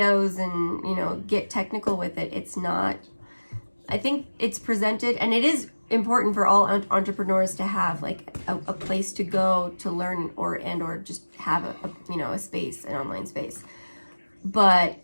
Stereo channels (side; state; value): both; inverted; correlation -1.00